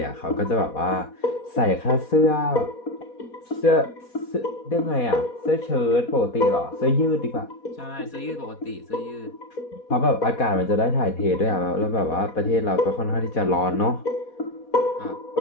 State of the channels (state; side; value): late; right; 4.1 ms